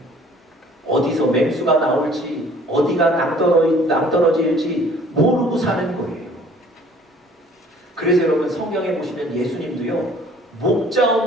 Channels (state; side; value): normal; both; correlation 0.54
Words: 어디서 맹수가 나올지, 어디가 낭떠러질지 모르고 사는 거예요. 그래서 여러분, 성경에 보시면 예수님도요, 목자